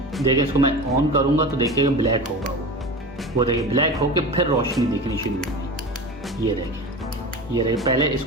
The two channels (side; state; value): both; normal; correlation 0.30